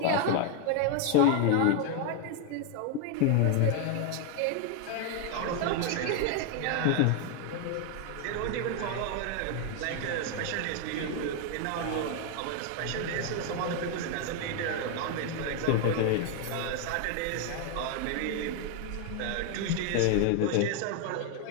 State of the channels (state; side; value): different; both; correlation 0.01